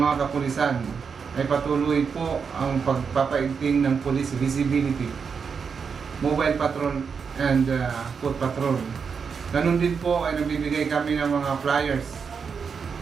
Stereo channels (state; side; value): quieter; left; 6.0 dB